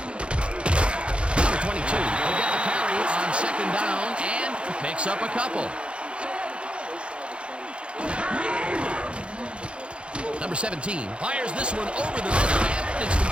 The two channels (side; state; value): left; late; 0.058 ms